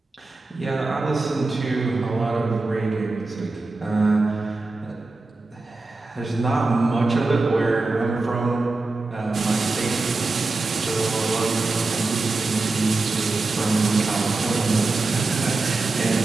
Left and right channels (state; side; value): quieter; left; 3.4 dB